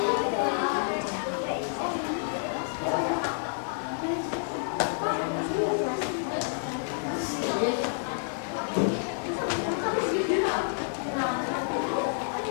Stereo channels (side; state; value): right; silent; digital silence